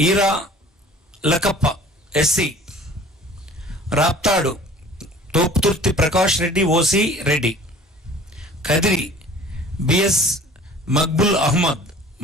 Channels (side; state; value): both; normal; correlation 0.48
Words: Eera Lakkappa SC. Raptadu Thopudurthi Prakash Reddy OC Reddy. Kadiri BS Maqbool Ahmed